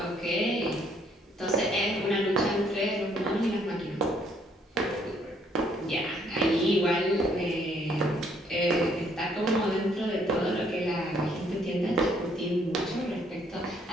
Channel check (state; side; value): normal; both; correlation 0.67